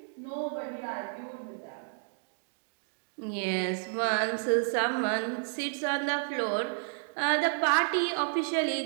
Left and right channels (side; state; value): left; silent; digital silence